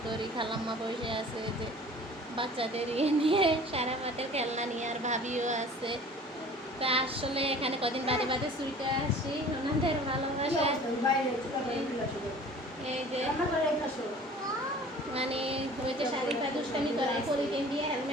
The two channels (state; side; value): normal; both; correlation 0.46